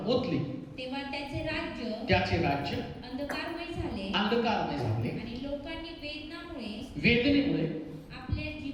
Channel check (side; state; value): both; identical; correlation 1.00